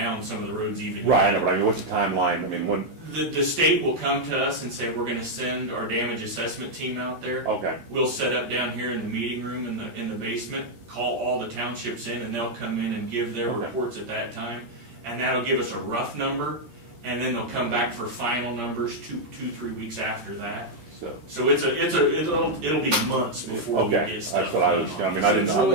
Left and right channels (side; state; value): left; late; 13 ms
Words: some of the roads even Right, I yet. know, but I mean, what's the timeline? I mean, when, The state will come to us and say, we're gonna send our damage assessment team out there. okay, We'll set up down here in the meeting room in the basement, call all the townships in, and they'll come in and give their Okay. reports at that time. And that'll give us a rough number, and then they'll come back for final numbers 3 weeks after that. so. So it'll be months before we Okay, get stuff. that's what I was, I mean, I didn't, I